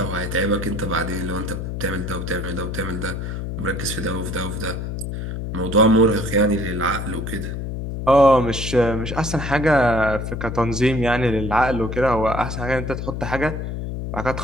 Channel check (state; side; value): noise; left; hum, 5 dB below the sound